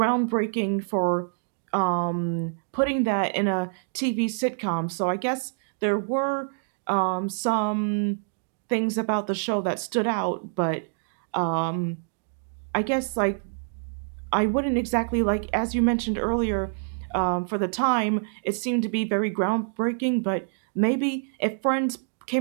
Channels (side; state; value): left; silent; digital silence